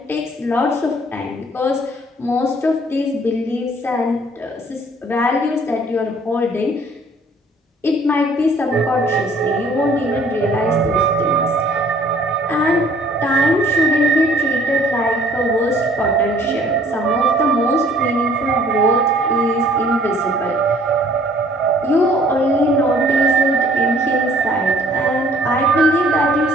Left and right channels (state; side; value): normal; both; correlation 0.57